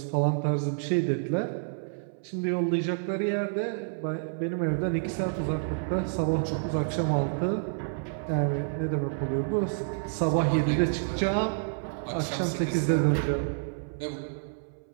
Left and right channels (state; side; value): silent; left; 58 dB below the other